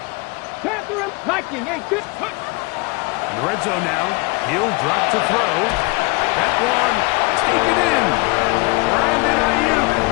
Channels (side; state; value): right; quieter; 27.2 dB